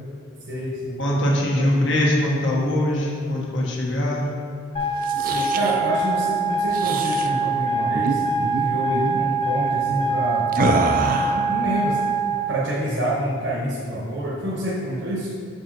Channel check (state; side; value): normal; both; correlation 0.61